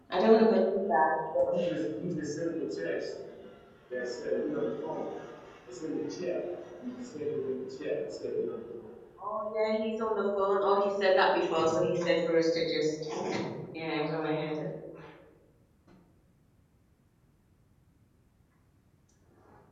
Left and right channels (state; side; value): identical; both; correlation 1.00